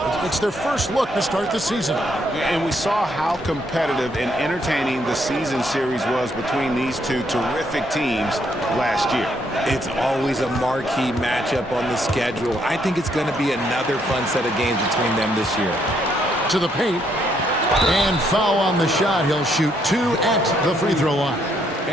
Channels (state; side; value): normal; both; correlation 0.72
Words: it's their first look to start the season. And we saw how competitive and entertaining the season series was between these two terrific teams last year. It's always a marquee matchup on the schedule. I think it's going to be another fun set of games between them this year. To the paint. And foul on the shot. He'll shoot 2 at the free throw line.